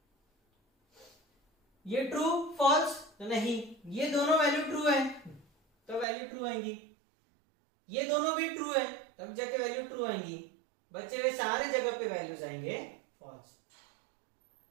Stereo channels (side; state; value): left; drops out; at 6.1 s